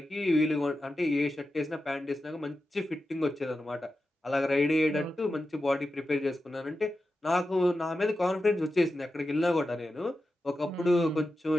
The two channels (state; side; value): normal; both; correlation 0.91